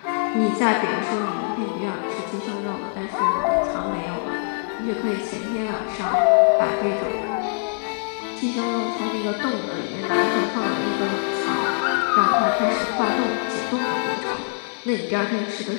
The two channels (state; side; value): silent; right; 63 dB below the other